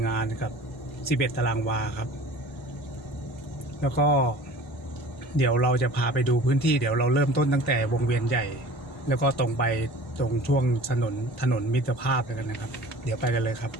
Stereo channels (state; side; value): normal; both; correlation 0.44